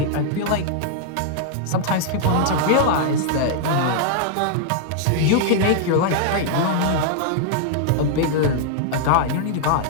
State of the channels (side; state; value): both; different; correlation -0.01